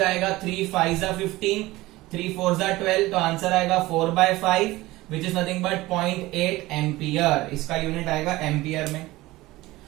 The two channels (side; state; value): left; quieter; 18.9 dB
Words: 3 5 जा 15, 3 4 जा 12, तो आंसर आएगा 4/5 which is nothing but 0.8 ampere. इसका यूनिट आएगा एम्पियर में.